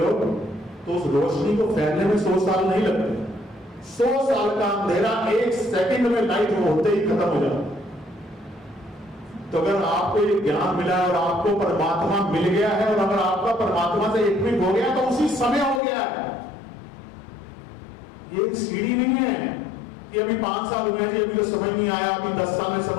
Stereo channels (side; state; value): right; drops out; at 15.8 s